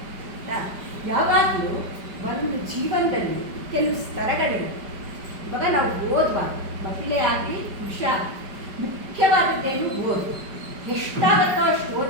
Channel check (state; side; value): late; left; 5.2 ms